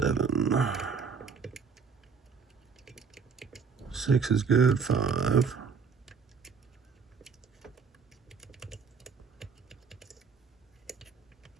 Six is good. Five.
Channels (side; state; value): left; quieter; 5.7 dB